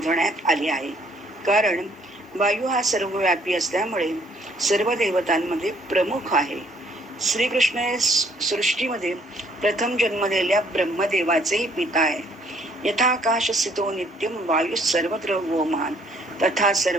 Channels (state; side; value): normal; both; correlation 0.63